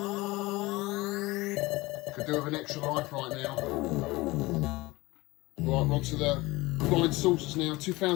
Could do with an extra life right now. Right, we're on to the flying saucers now.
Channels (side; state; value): right; quieter; 21.1 dB